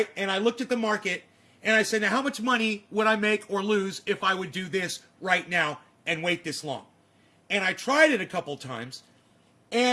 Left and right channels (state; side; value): identical; both; correlation 1.00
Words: And I looked at the market and I said, now how much money would I make or lose if I would do this right now and wait this long? And I tried it a couple times,